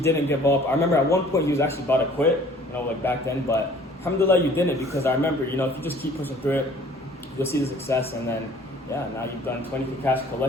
give up. I remember at one point he was actually about to quit, like back then. But alhamdulillah, you didn't, because I remember, if you just keep pushing through it, you'll see the success. And then, now you've done 20K cash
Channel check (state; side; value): normal; both; correlation 0.53